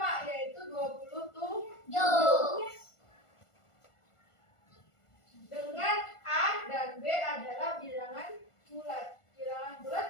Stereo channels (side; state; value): right; late; 1.4 ms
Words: yaitu 27. Dengan A dan B adalah bilangan bulat. Bilangan